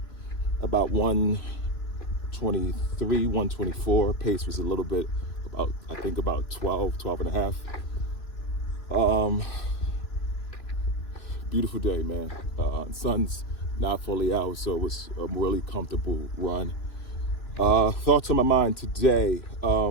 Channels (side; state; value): right; late; 3.0 ms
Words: about 123, 124. Pace was a little bit I think about 12 and a half. Beautiful day, man. Sun's not fully out, so it was a really comfortable run. Thoughts on my mind today.